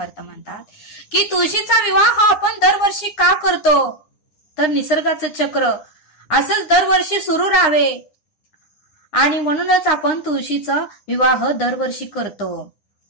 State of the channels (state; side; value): late; right; 9.7 ms